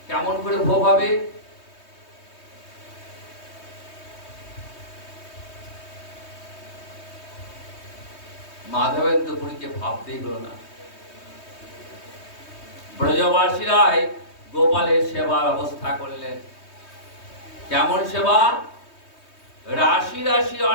কেমন করে ভোগ হবে? মাধবেন্দ্রপুরীকে ভাবতেই হলো না। ব্রজবাসীরাই গোপালের সেবার ব্যবস্থা করলেন। কেমন সেবা? রাশি রাশি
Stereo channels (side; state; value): right; late; 3.2 ms